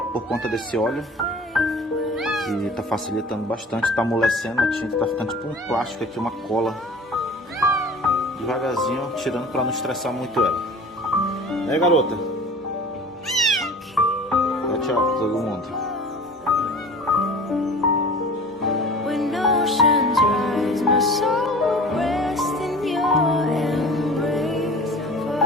por conta desse óleo, que está facilitando bastante, está amolecendo a tinta, está ficando tipo um plástico aqui, uma cola. Devagarzinho, tirando para não estressar muito ela. Né, garota? Dá tchau para todo mundo.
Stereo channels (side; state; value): both; normal; correlation 0.42